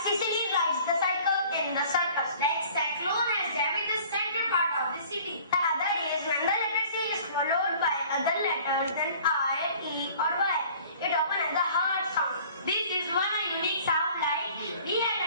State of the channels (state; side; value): inverted; both; correlation -0.50